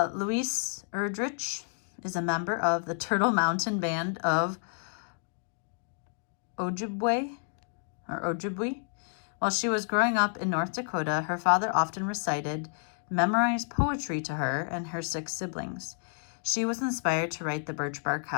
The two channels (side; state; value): right; silent; 58 dB below the other